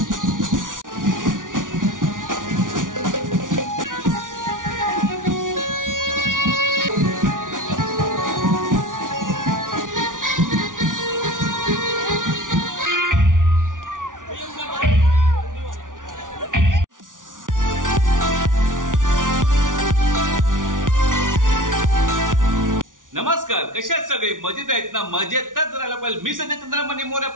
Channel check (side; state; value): left; late; 0.88 ms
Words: नमस्कार, कशा आहेत सगळे? मजेत आहेत ना? मजेतच राहायला पाहिजे। मी संजय चंद्रमणी मोरे